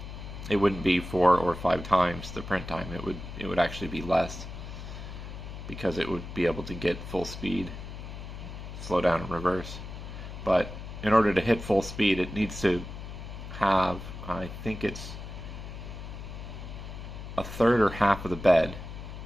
it wouldn't be 4 or 5 times the print time. It would actually be less, because it would be able to get full speed, slow down and reverse. But in order to hit full speed, it needs to have, I think it's a third or half of the bed,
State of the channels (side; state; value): left; noise; hum, 10 dB below the sound